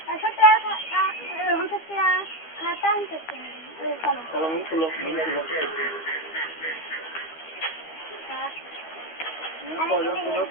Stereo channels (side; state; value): right; late; 12 ms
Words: 100 টাকা খাতা আনতে কলম খুলো কয়জন তোমার